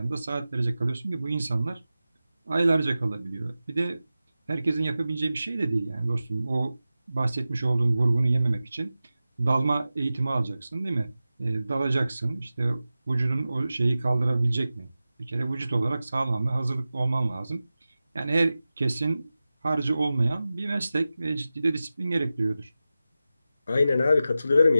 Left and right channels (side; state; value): both; inverted; correlation -0.94